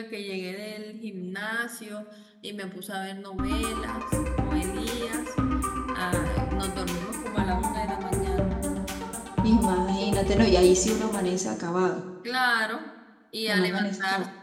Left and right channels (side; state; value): both; identical; correlation 1.00